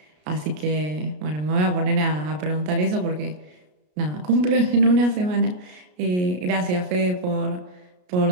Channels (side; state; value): left; late; 33 ms